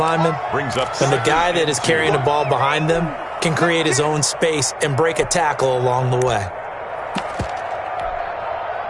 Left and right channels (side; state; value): both; identical; correlation 1.00